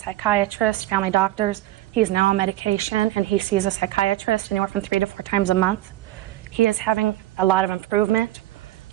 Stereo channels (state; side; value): quieter; left; 15.4 dB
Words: psychiatrists, family doctors. He's now on medication, and he sees a psychiatrist anywhere from 3 to 4 times a month. He is having a lot of improvement,